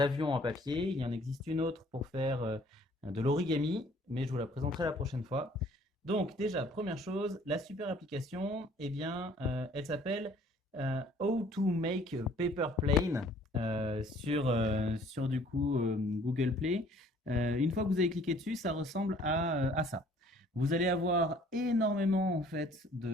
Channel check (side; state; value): both; normal; correlation 0.57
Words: en papier. Il y en existe une autre pour faire de l'origami, mais je vous la présenterai la prochaine fois. Donc déjà, première chose, la super application, eh bien, elle s'appelle How to Make a Paper Plane sur du coup Google Play. Une fois que vous avez cliqué dessus, ça ressemble à ça. Vous allez avoir énormément en fait